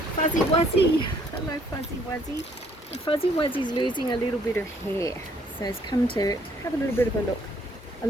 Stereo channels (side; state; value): both; normal; correlation 0.65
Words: Fuzzy Wuzzy. Hello Fuzzy Wuzzy. And Fuzzy Wuzzy's losing a little bit of hair, so it's come to have a little bit of a